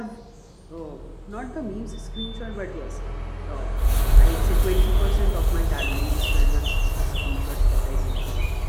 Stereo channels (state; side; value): identical; both; correlation 1.00